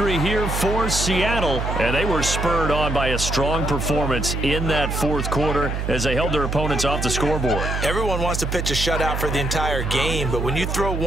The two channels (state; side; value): noise; right; hum, 2 dB below the sound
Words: here for Seattle, and they were spurred on by a strong performance in that fourth quarter as they held their opponents off the scoreboard. Everyone wants to pitch a shutout for the entire game, but when you throw